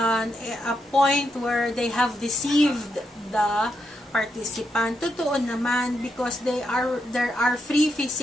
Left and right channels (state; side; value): normal; both; correlation 0.82